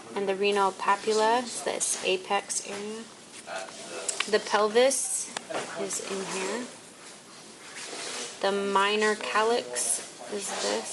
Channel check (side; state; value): both; identical; correlation 1.00